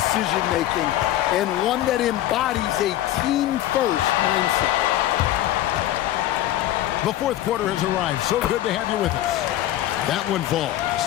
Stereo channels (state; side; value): quieter; right; 13.8 dB